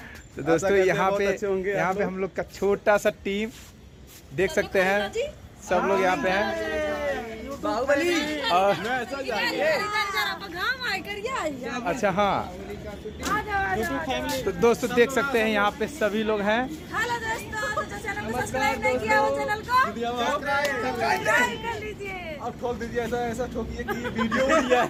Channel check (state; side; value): identical; both; correlation 1.00